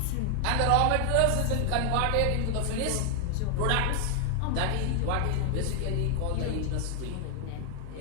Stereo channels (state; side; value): different; both; correlation 0.00